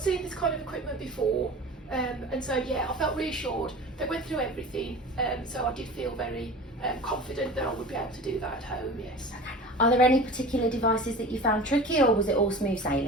this kind of equipment before, and so yeah, I felt reassured. They went through everything, so I did feel very confident that I would be able to do that at home, yes. Are there any particular devices that you found tricky, or was it all smooth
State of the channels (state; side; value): normal; both; correlation 0.37